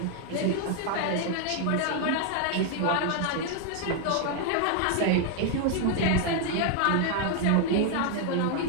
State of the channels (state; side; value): different; both; correlation 0.00